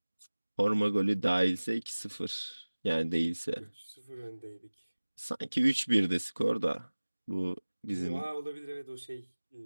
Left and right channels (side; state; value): both; inverted; correlation -1.00